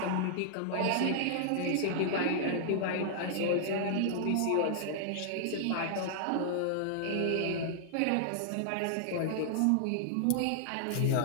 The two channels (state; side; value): different; both; correlation -0.01